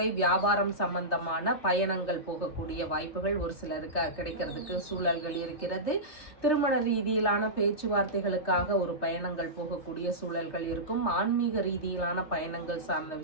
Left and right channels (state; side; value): late; right; 3.3 ms